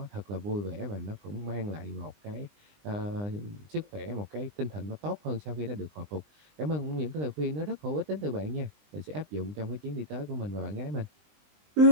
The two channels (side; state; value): left; late; 20 ms